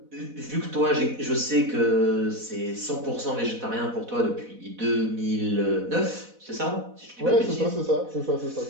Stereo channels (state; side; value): late; left; 4.1 ms